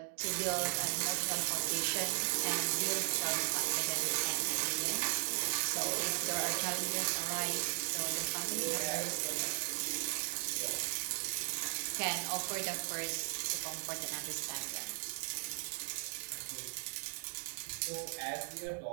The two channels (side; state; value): left; silent; 53 dB below the other